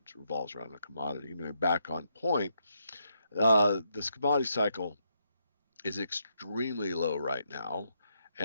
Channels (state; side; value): inverted; both; correlation -0.79